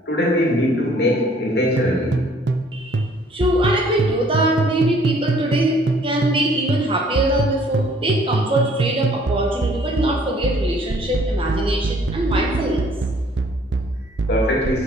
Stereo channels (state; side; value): normal; both; correlation 0.59